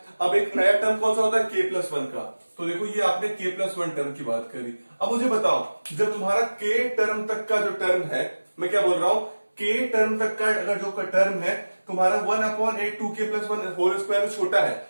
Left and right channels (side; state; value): both; inverted; correlation -1.00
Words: अब एक नया टर्म कौन सा होता है, k+1 का। तो देखो ये आपने k+1 टर्म की बात करी। अब मुझे बताओ जब तुम्हारा k टर्म तक का जो टर्म है, मैं क्या बोल रहा हूं, k टर्म तक का अगर जो टर्म है तुम्हारा 1/8 2k+1 होल स्क्वायर छोटा है,